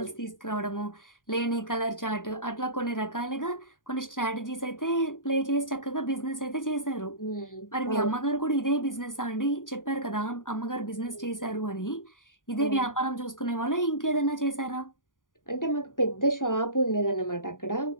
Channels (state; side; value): late; right; 0.89 ms